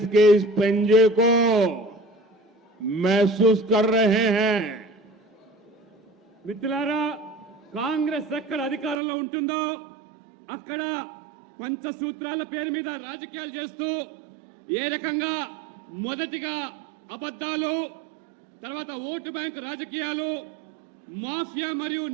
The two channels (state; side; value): drops out; left; at 9.0 s